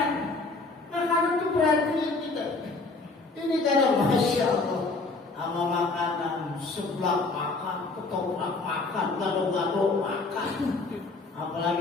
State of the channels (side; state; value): right; quieter; 3.6 dB